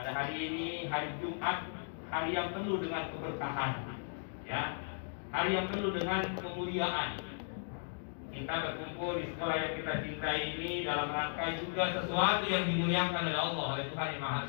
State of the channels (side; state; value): right; silent; digital silence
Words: hari ini, hari Jumat, hari yang penuh dengan keberkahan, ya, hari yang penuh dengan kemuliaan. Kita berkumpul di sekolah yang kita cintai ini dalam rangka juga sesuatu yang dimuliakan oleh Allah, oleh Tuhan Yang Maha